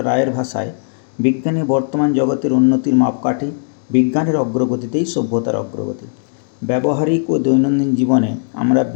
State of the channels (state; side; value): silent; right; digital silence